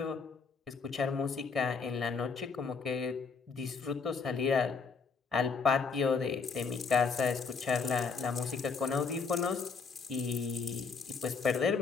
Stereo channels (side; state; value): right; quieter; 5.1 dB